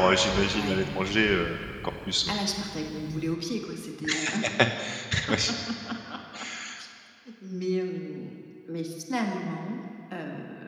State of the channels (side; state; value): both; identical; correlation 1.00